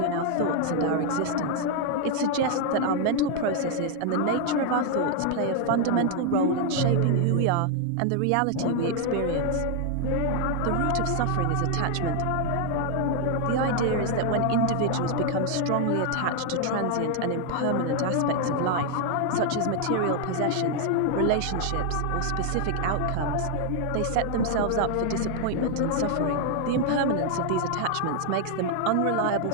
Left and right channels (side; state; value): both; different; correlation 0.00